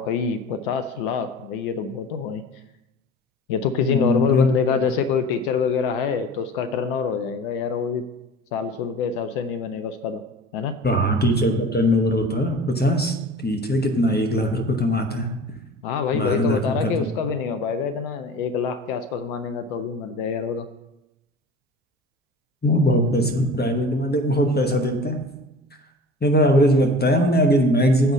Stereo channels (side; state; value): both; normal; correlation 0.41